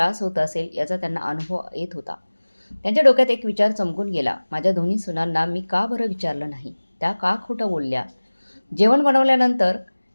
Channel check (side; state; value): both; inverted; correlation -1.00